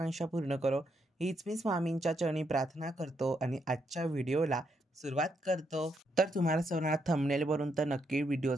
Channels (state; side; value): normal; both; correlation 0.78